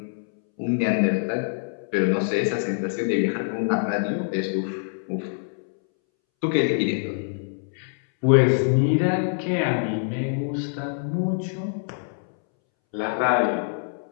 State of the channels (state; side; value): silent; right; 62 dB below the other